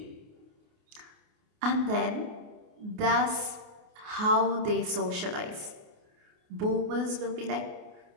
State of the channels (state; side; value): late; left; 28 ms